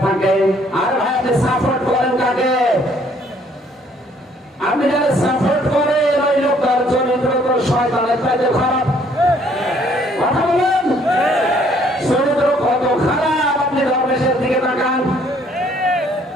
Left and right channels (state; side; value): normal; both; correlation 0.63